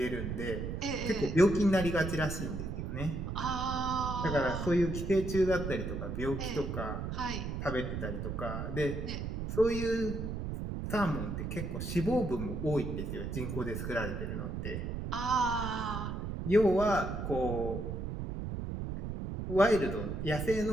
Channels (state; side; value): noise; right; rumble, 4 dB below the sound